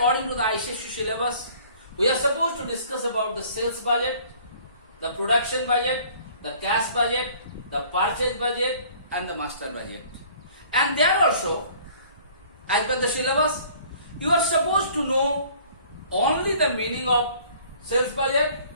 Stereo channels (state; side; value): inverted; both; correlation -0.53